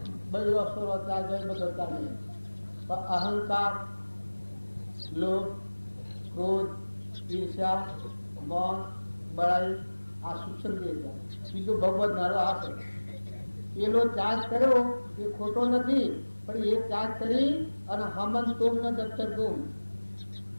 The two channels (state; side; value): inverted; both; correlation -1.00